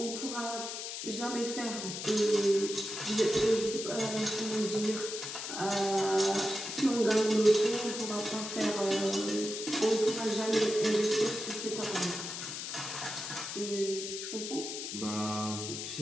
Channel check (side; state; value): left; noise; hiss, 6 dB below the sound